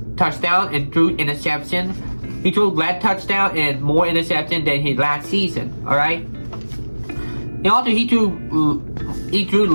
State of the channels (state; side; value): inverted; both; correlation -1.00